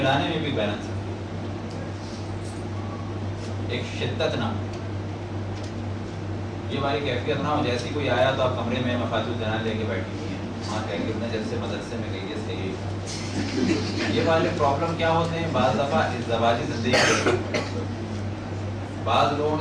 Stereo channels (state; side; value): identical; both; correlation 1.00